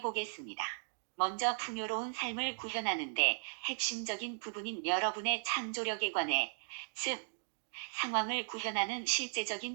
보겠습니다. 먼저 풍요로운 삶을 구현하는데 핵심적인 부분인 여러분의 창조력에 관해, 즉, 상황을 구현하는 실제적인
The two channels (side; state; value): left; silent; digital silence